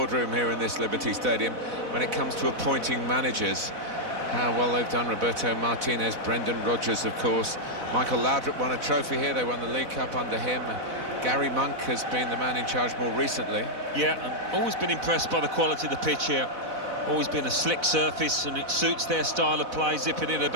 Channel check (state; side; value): late; left; 4.0 ms